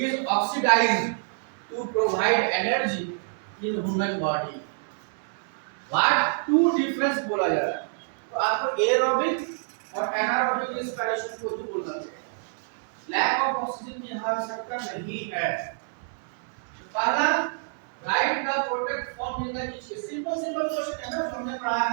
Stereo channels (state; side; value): silent; left; digital silence